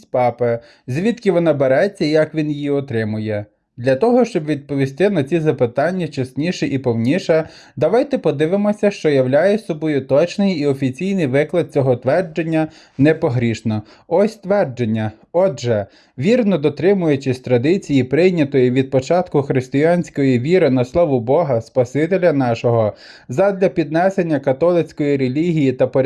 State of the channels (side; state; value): both; identical; correlation 1.00